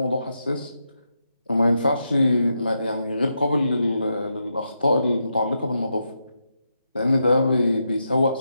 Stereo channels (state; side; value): inverted; both; correlation -0.85